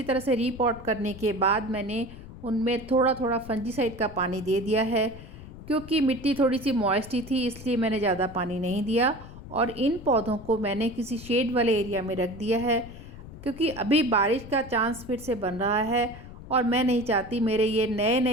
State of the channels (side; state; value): left; noise; rumble, 15 dB below the sound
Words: तरह से रीपॉट करने के बाद मैंने उनमें थोड़ा थोड़ा फंजीसाइड का पानी दे दिया है। क्योंकि मिट्टी थोड़ी सी मॉइस्टी थी इसलिए मैंने ज़्यादा पानी नहीं दिया और इन पौधों को मैंने किसी शेड वाले एरिया में रख दिया है क्योंकि अभी बारिश का चांस फिर से बन रहा है और मैं नहीं चाहती मेरे ये नए